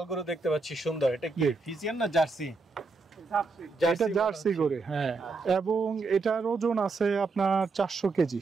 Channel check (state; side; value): quieter; left; 4.0 dB